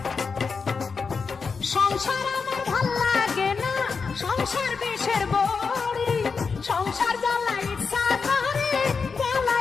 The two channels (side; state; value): right; quieter; 5.2 dB